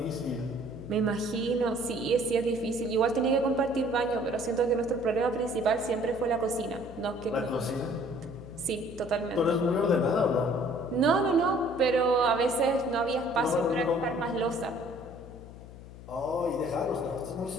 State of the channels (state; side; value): noise; left; hum, 16 dB below the sound